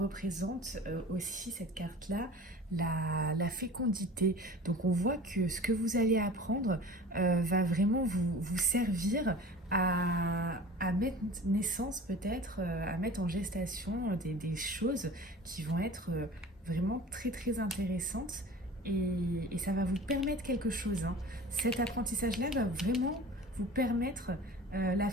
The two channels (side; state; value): both; normal; correlation 0.40